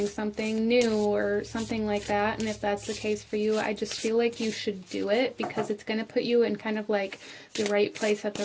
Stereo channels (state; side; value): identical; both; correlation 1.00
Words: something new or something like that. And if that's the case for you, I just feel like you should do it because it's going to put you in kind of like the right place at